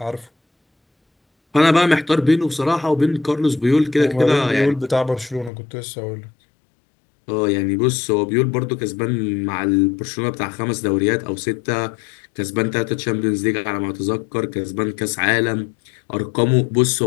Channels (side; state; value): right; drops out; at 5.5 s